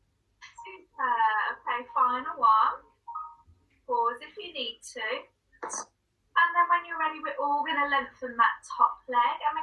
final one. Pause if you need to. And then when you're ready, we're all going to lengthen that top leg and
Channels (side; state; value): both; identical; correlation 1.00